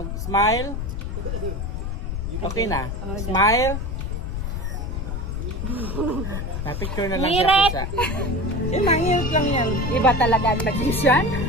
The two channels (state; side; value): noise; left; rumble, 3 dB below the sound